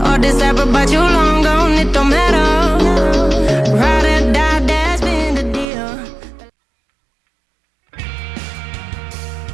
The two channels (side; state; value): left; drops out; at 5.7 s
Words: All this ever but you long gone, it don't matter. Ride or die, that's been the deal.